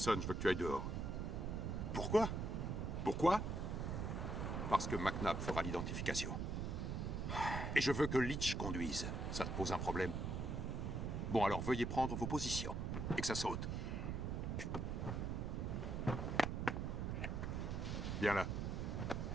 je veux que tu ailles dehors. Pourquoi? Pourquoi? Parce que McNabb fera l'identification. Et je veux que Leach conduise. Ça te pose un problème? Bon, alors veuillez prendre vos positions. Et que ça saute. Viens là.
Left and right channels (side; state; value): right; noise; rumble, 1 dB below the sound